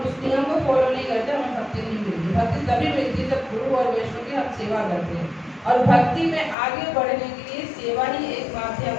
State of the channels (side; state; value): right; drops out; at 6.6 s